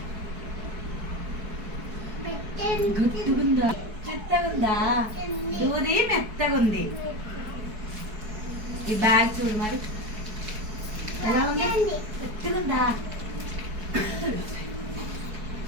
గట్టిగుందా? మెత్తగా ఉందా? దూది మెత్తగా ఉంది. ఈ బ్యాగ్ చూడు, మరి ఎలా ఉంది? గట్టిగా ఉందా?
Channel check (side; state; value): left; late; 4.6 ms